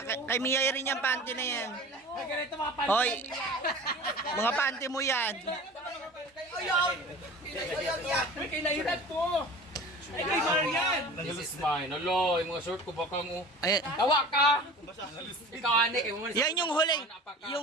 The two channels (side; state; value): both; normal; correlation 0.39